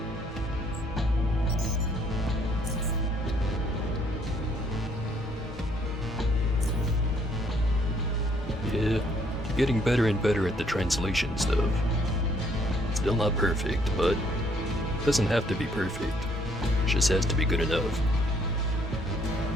Yeah, getting better and better at the translation stuff. Still not perfect, but it doesn't have to be perfect. It just has to be good enough.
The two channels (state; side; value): normal; both; correlation 0.66